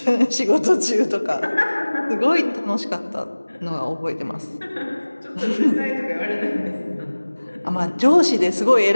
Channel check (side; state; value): both; inverted; correlation -1.00